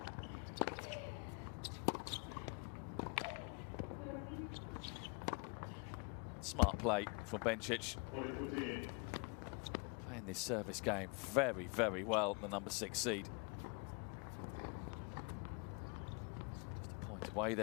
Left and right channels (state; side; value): quieter; right; 32.7 dB